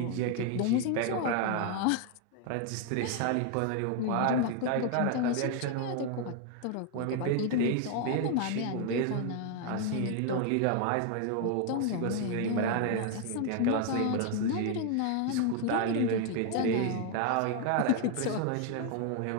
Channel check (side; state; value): both; different; correlation 0.00